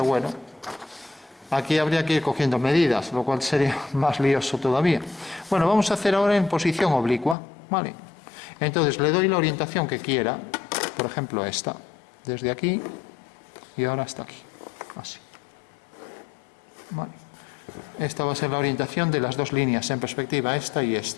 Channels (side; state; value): right; drops out; at 7.4 s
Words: bueno. Aquí habría que ir cogiendo medidas, lo cual sería más lioso todavía. Bueno, vamos a hacer ahora en posición oblicua, ¿vale? Entonces le doy la orientación que quiera, por ejemplo esta, desde aquí y ahora hasta aquí. así. Vale. Esta va a ser la orientación de las dos líneas en perspectiva, esta y